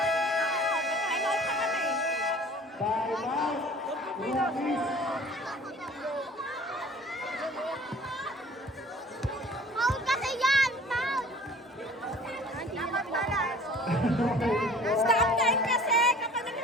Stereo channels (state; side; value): normal; both; correlation 0.48